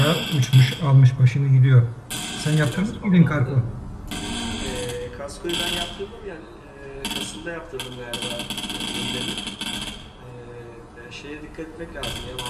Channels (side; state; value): both; identical; correlation 1.00